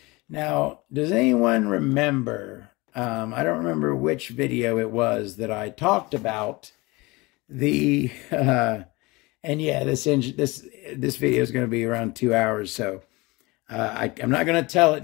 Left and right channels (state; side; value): quieter; right; 23.4 dB